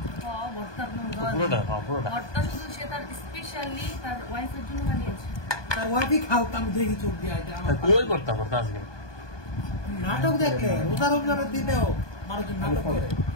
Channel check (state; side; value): late; right; 1.2 ms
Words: ভর্তা শুধু সে তার স্পেশালি তার ওয়াইফের জন্য বানিয়েছে। তার ওয়াইফই খাও আমি দেখি চোখ দিয়ে এটা আমার কই করতে ভর্তা আজকে নাটক দেখলে রোজা রমজানের দিনেও মানুষজন নাটক করে